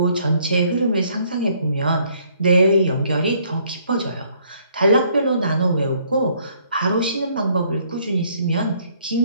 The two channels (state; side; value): inverted; both; correlation -0.65